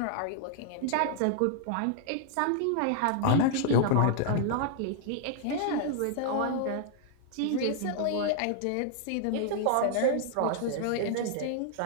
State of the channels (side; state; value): both; different; correlation -0.01